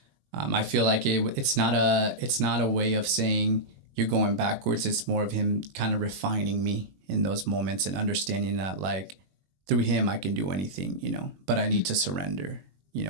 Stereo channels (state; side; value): late; left; 21 ms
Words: feel like it's not a way of saying you're going backwards. It's more of him kind of refining me in those moments and understanding that like through him, I can do anything, but I need to surrender,